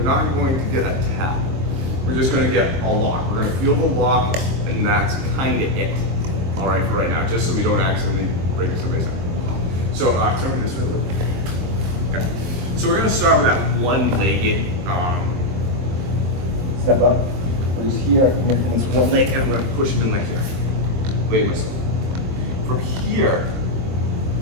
get a tap. We're just gonna get a lock. We're gonna feel the lock, and that's kind of it. All right, for right now, just so we don't accidentally break somebody's ankle. So turn me this way a little. Okay. So we're gonna start with that one-legged. Step up. Where he's here. I'm gonna come this one leg, and I'm gonna push him in like here. Lay myself. From here,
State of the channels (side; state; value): left; late; 23 ms